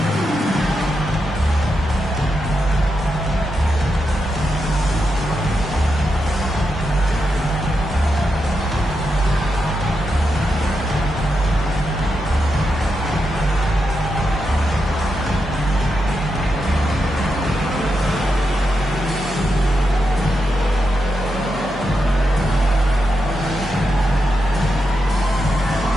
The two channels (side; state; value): both; normal; correlation 0.86